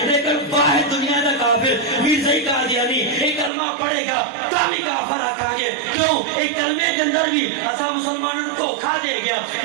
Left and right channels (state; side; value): drops out; left; at 3.5 s